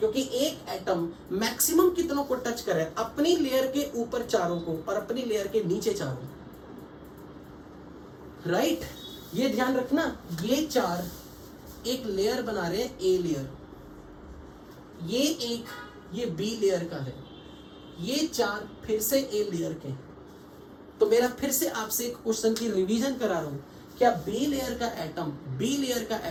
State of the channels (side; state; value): both; identical; correlation 1.00